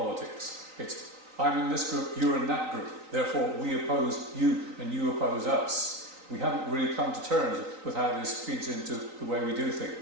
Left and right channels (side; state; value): left; late; 3.9 ms